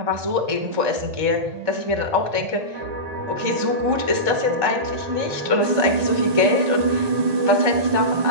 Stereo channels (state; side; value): late; left; 1.8 ms